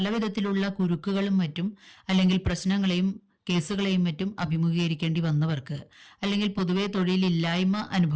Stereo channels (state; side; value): identical; both; correlation 1.00